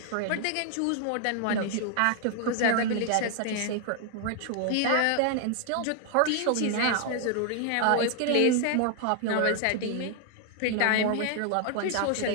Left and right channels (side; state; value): both; different; correlation 0.00